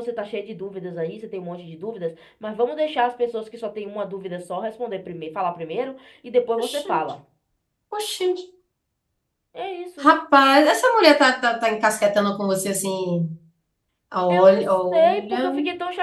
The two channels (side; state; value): both; identical; correlation 1.00